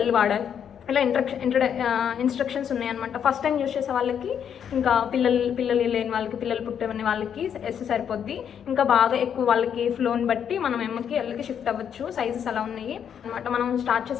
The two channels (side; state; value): right; quieter; 8.3 dB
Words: వాడాలి. ఇలా ఇన్స్ట్రక్షన్స్ ఉన్నాయన్నమాట. ఫస్ట్ టైం యూజ్ చేసే వాళ్ళకి, ఇంకా పిల్లలు లేని వాళ్ళకి, పిల్లలు పుట్టిన వాళ్ళకి ఎస్ సరిపోద్ది. ఇంకా బాగా ఎక్కువ వాళ్ళకి ఫ్లోని బట్టి మనం ఎమ్కి ఎల్కి షిఫ్ట్ అవ్వచ్చు. సైజెస్ అలా ఉన్నాయి అనమాట. మనం స్టార్ట్